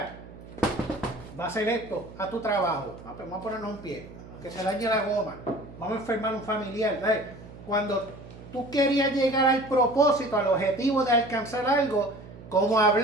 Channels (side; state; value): right; noise; hum, 17 dB below the sound